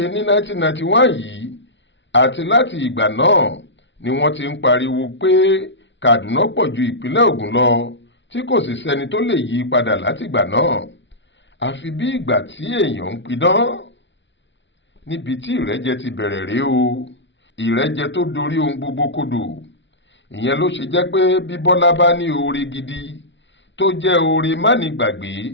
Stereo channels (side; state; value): right; late; 0.53 ms